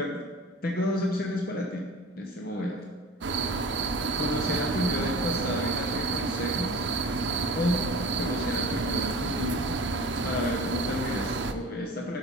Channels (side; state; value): both; normal; correlation 0.39